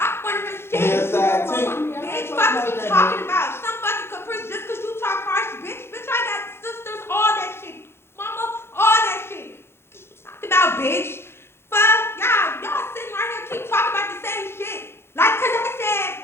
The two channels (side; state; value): right; late; 0.12 ms